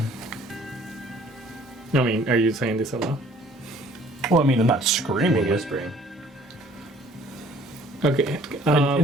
I mean, are you saying this aloud? Well, I mean, I'm not We're screaming it. whispering. Okay.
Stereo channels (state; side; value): normal; both; correlation 0.56